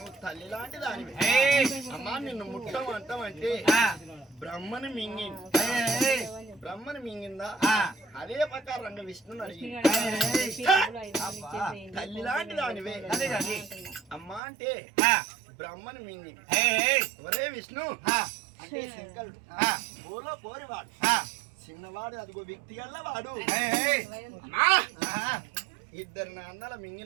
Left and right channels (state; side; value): drops out; left; at 14.4 s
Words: తల్లి లాంటి దానివి. అమ్మా నిన్ను ముట్టం అంటామంటే బ్రహ్మని మింగింది. బ్రహ్మని మింగిందా? అదే ప్రకారంగా విష్ణుని అడిగింది. తల్లి లాంటి దానివే అమ్మా అంటే బ్రహ్మని మింగింది. ఒరే విష్ణు అంటే శంకరుడు ఓలో పోరివాడు, చిన్నవాడు, అదిగో వ్యక్తి గల్ల వాడు. ఇద్దరు నా అన్నల